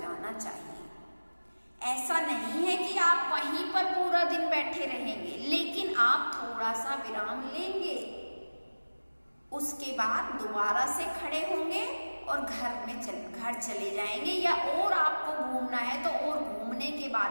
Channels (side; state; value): both; inverted; correlation -1.00